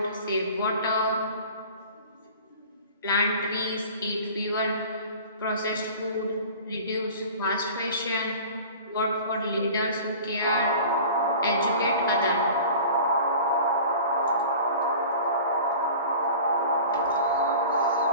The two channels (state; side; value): inverted; both; correlation -0.41